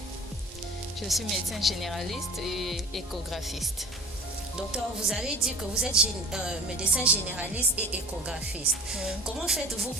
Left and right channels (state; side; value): normal; both; correlation 0.42